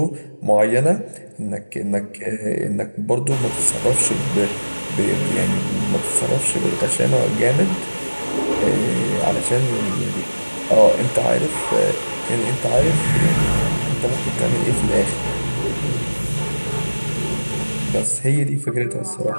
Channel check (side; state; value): both; inverted; correlation -1.00